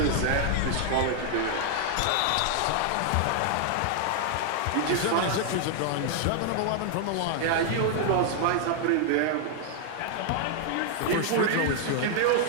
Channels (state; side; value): different; both; correlation 0.00